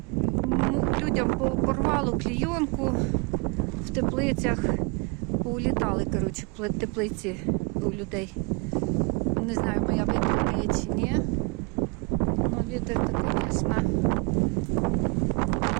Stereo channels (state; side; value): quieter; left; 31.9 dB